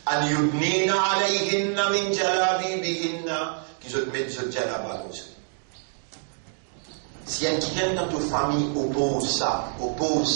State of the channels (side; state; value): left; silent; digital silence